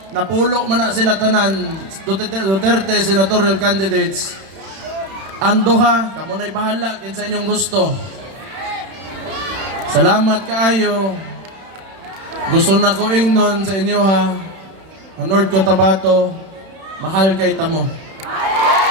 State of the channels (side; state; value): left; late; 31 ms